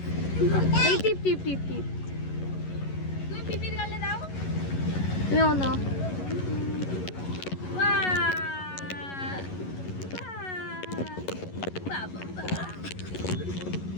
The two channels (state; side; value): late; right; 11 ms